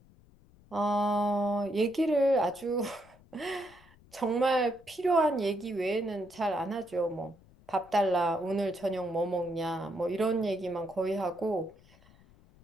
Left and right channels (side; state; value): left; noise; rumble, 27 dB below the sound